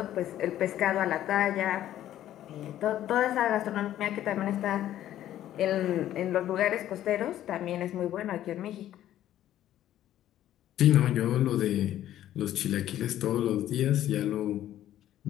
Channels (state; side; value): quieter; right; 12.4 dB